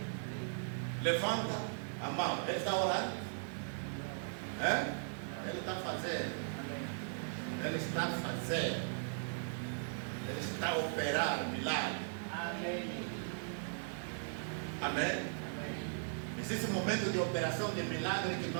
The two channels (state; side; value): silent; left; 52 dB below the other